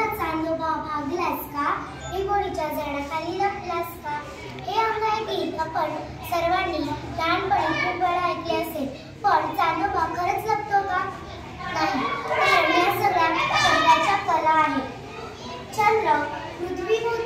चांदोबा भागलास का, हे गोडीच्या झाडाखाली लपलास का. हे अंग आहे गीत आपण सर्वांनी लहानपणी खूप वेळा ऐकले असेल. पण चांदोबा खरंच लपतो का? नाही, कारण या सगळ्या शब्दाच्या कला आहे. चंद्र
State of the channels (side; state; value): both; identical; correlation 1.00